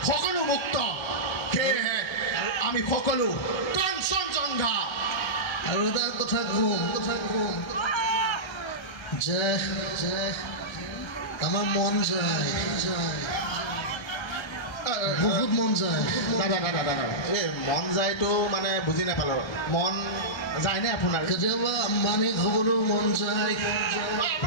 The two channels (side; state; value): right; late; 1.3 ms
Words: সকলো মুক্ত সেয়েহে আমি সকলো কাঞ্চনজংঘা আৰু এটা কথা কম যে আমাৰ মন যায় বহুত মন যায় দাদা এই মন যায়তো মানে বুজি নাপালোঁ মন যায়নে আপোনাৰ কেতিয়াবা আম্বানীক হ'বলৈও মন যায়